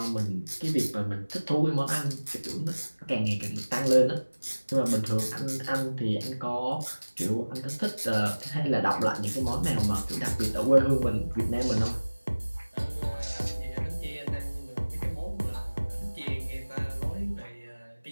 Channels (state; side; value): inverted; both; correlation -1.00